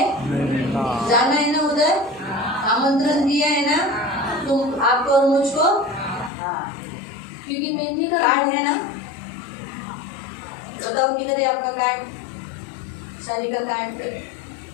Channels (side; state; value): right; drops out; at 6.3 s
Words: जाना है ना उधर, आमंत्रण दिया है ना तुम, आपको और मुझको। क्योंकि मेमने का कार्ड है ना, बताओ किधर है आपका कार्ड, शादी का कार्ड?